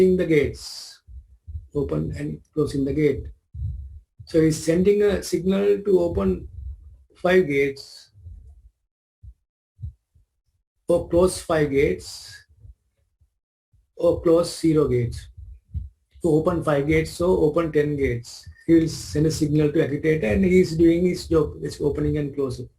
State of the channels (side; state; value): both; identical; correlation 1.00